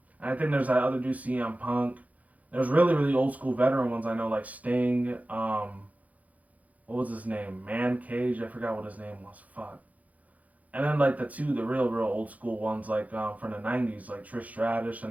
And I think there's that other dude, CM Punk. There's really, really old school veteran ones I know, like Sting. What was his name? Man Cage. I forgot what his name was. Fuck. And then like the real, real old school ones, like from the '90s, like Trish Stratus,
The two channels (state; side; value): late; left; 0.074 ms